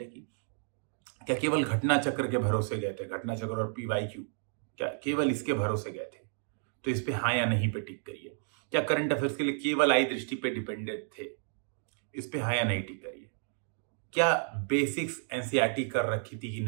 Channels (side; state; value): left; silent; digital silence